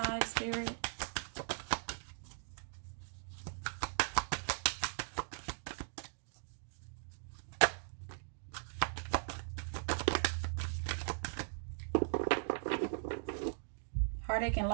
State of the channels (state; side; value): silent; left; digital silence